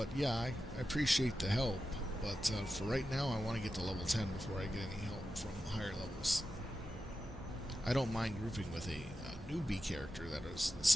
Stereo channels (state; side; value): normal; both; correlation 0.91